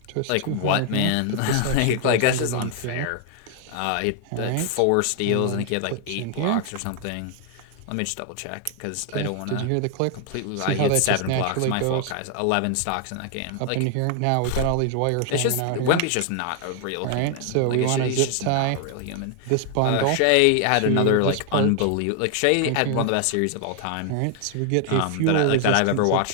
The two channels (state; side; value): different; both; correlation 0.00